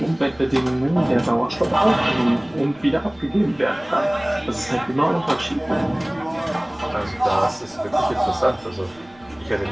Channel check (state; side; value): noise; right; rumble, 28 dB below the sound